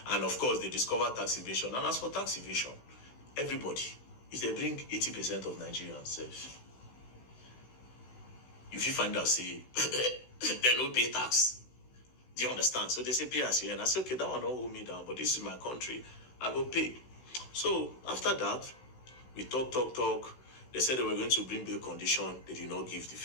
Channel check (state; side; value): late; right; 16 ms